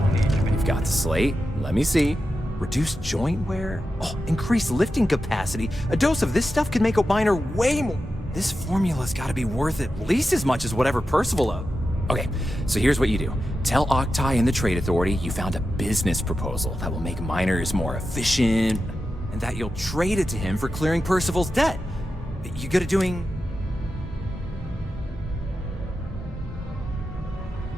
needs. You've got the slate. Let me see. Reduced joint wear? Oh, increased lifting capacity. A dose of this stuff could make a miner way more. This formula's gotta be worth at least as much as whatever Percival owed. Okay, so here's what you do. Tell Octai and the Trade Authority you found a business proposal that will make miners more efficient, and that you'll trade it to him for clearing Percival's debt. You good at doing...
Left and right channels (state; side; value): normal; both; correlation 0.91